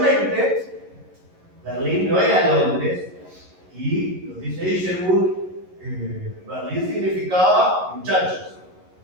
Berlín no era Londres, y lo dice Isherwood, Berlín significaba muchachos.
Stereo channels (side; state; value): left; late; 11 ms